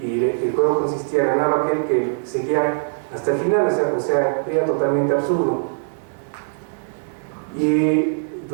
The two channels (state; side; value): silent; left; digital silence